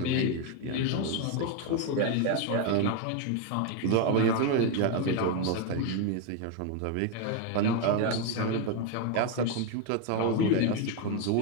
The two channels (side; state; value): both; different; correlation 0.02